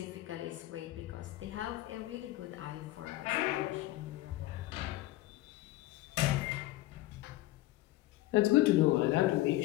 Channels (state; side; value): quieter; right; 16.5 dB